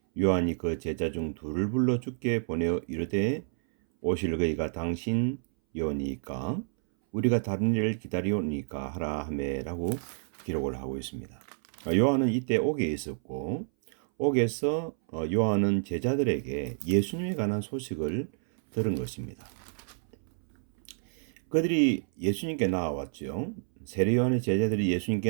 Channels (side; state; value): left; silent; 58 dB below the other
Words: 요한이 그 제자 중 둘을 불러 주께 보내어 이르되 오실 그이가 당신이오니까 우리가 다른 일을 기다리오니까 하라 하매라고 기록을 하고 있습니다. 요한은 이때 옥에 있었고 옥에서 요한은 제자들에게 예수님에 관한 소식을 들은 것입니다. 그들이 예수님께 나와왔죠. 세례 요한의 제자들이